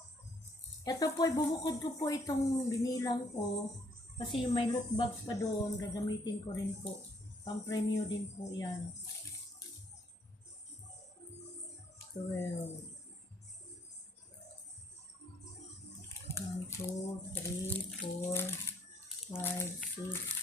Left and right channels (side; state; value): both; normal; correlation 0.67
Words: Ito po, bubukod ko po itong binilang ko. Kasi may loot bags pa doon. Gagamitin ko rin po. Pang-premyo din po yan. 12. 1, 2, 3, 4, 5, 6,